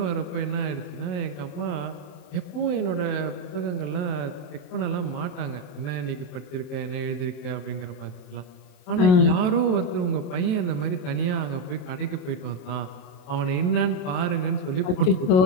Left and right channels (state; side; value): late; right; 27 ms